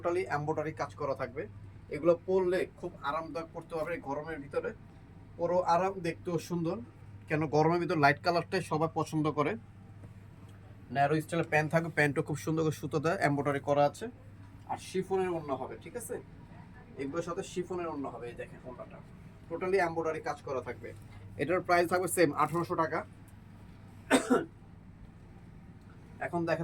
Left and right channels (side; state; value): both; identical; correlation 1.00